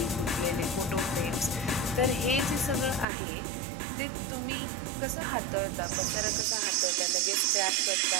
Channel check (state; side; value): drops out; left; at 3.1 s